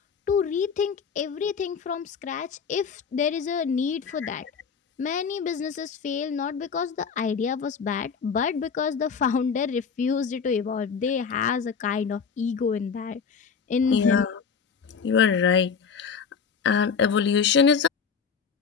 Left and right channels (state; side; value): quieter; right; 6.2 dB